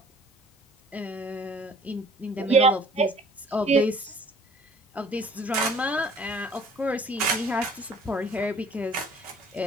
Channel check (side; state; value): both; normal; correlation 0.53